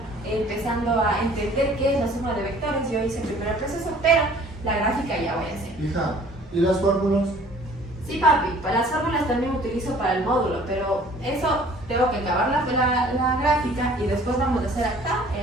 empezando a entender qué es la suma de vectores, yo hice primero el proceso, pero la gráfica ya voy a hacer. Hija, ¿y las fórmulas? Sí, papi, para las fórmulas también utilizo para el módulo, pero eso tengo que acabar la gráfica y después vamos a hacer acá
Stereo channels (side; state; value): both; normal; correlation 0.52